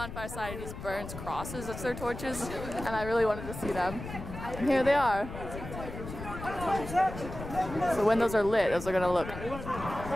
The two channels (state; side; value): noise; left; rumble, 10 dB below the sound